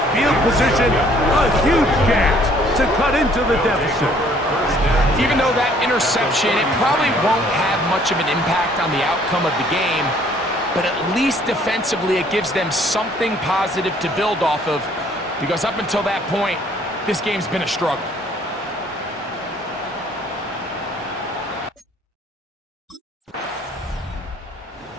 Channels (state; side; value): normal; both; correlation 0.60